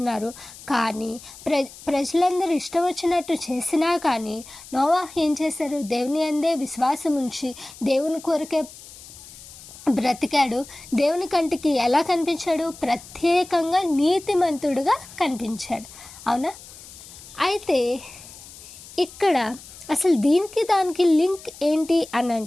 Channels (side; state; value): left; noise; hiss, 18 dB below the sound